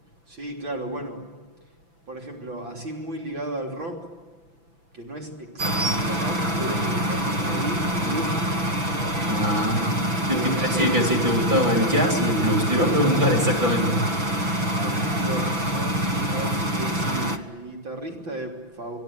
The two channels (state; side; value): late; left; 6.0 ms